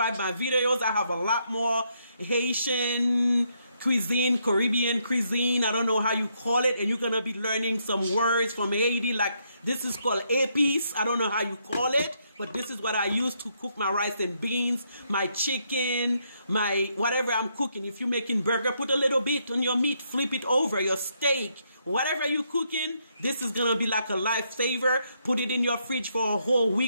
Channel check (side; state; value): both; inverted; correlation -0.75